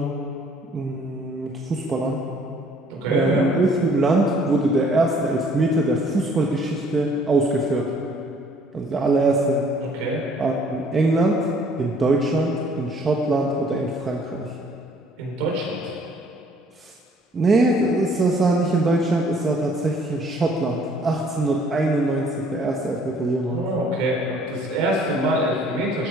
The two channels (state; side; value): normal; both; correlation 0.59